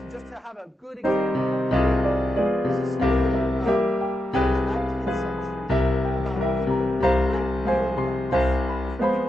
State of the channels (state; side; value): normal; both; correlation 0.87